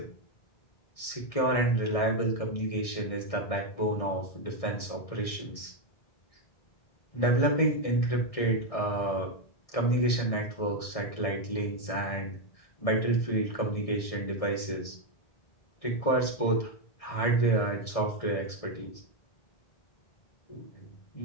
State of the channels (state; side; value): late; right; 1.7 ms